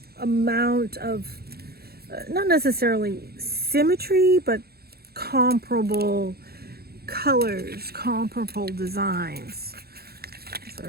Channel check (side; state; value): left; late; 0.46 ms